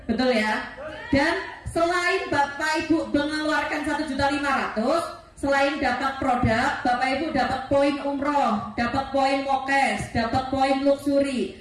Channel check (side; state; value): both; identical; correlation 1.00